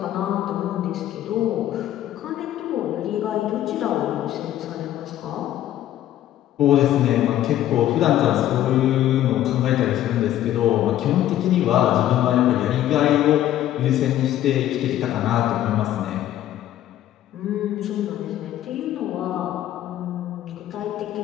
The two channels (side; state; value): right; quieter; 12.6 dB